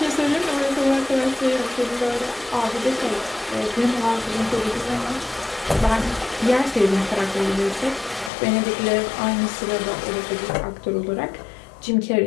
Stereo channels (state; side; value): drops out; right; at 8.3 s